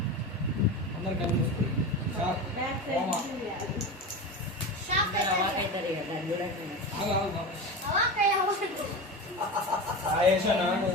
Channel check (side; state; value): both; normal; correlation 0.25